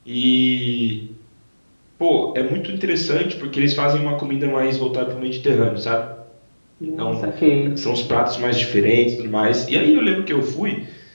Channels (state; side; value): inverted; both; correlation -1.00